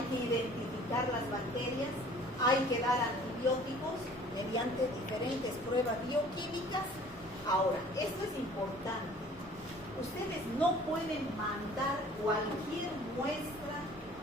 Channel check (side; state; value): both; normal; correlation 0.51